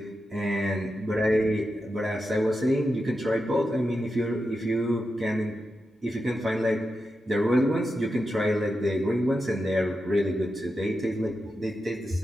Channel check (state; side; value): normal; both; correlation 0.89